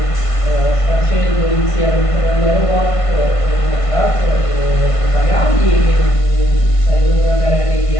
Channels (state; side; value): late; right; 1.5 ms